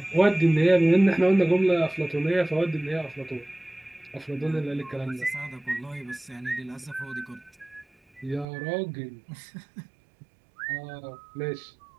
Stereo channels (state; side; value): drops out; left; at 8.5 s